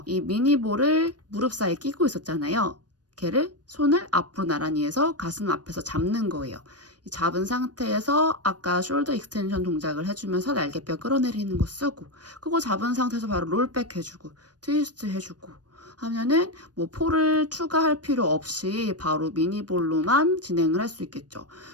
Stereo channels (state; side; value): late; left; 0.69 ms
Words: 이 미니볼을 무릎 사이에 끼고 있었잖아요. 걔를 손을 앞으로 나란히 해서 가슴 앞에서 잡는 거예요. 잡은 상태에서 아까 숄더 익스텐션 동작을 해주면서 날개뼈 끌어내리는 거 쓰고, 그거 잡은 상태에서 바로 롤백 해주고 트위스트 해주고 하면은 폴을 추가할 필요 없이 바로 미니볼로만 진행을 할 수 있겠죠.